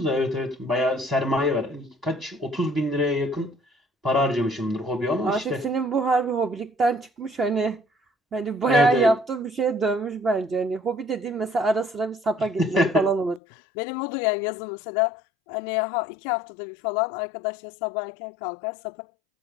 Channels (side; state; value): right; drops out; at 13.4 s